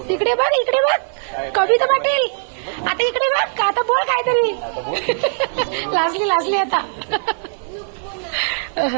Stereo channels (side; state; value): left; silent; digital silence